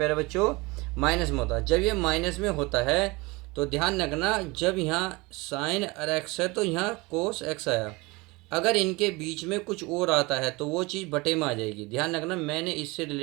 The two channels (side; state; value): left; quieter; 24.4 dB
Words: बच्चों? माइनस में होता है। जब ये माइनस में होता है तो ध्यान रखना, जब यहाँ साइन x है तो यहाँ कोस x आया। अगर इनके बीच में कुछ और आता है तो वो चीज़ बटे में आ जाएगी। ध्यान रखना, मैंने इससे